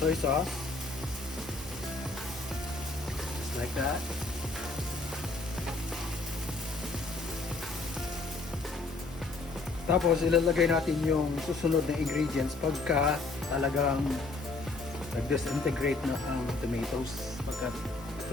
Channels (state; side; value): quieter; right; 3.5 dB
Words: sauce, just like that. Tapos ilalagay natin yung susunod na ingredients pagka talagang nag-disintegrate na ang tomatoes, pagka